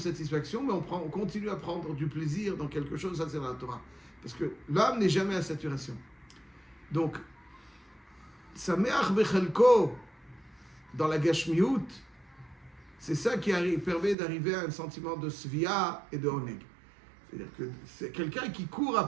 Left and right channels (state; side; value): drops out; left; at 14.2 s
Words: mais on continue à prendre du plaisir dans quelque chose, ça c'est dans la Torah. Parce que l'âme n'est jamais à saturation. Donc, Sameach Bechelko, dans la Gashmiut, c'est ça qui permet d'arriver à un sentiment de Svia et de Oneg. C'est-à-dire que c'est quelqu'un qui court